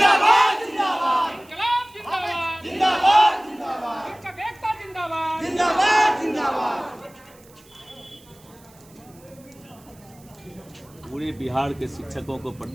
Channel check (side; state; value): right; noise; hiss, 27 dB below the sound